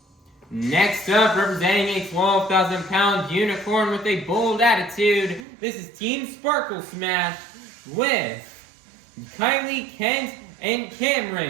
Next up, representing a 12,000-pound unicorn with a bold attitude, this is Team Sparkle Smash with Kylie, Kent, and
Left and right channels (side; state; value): left; drops out; at 5.5 s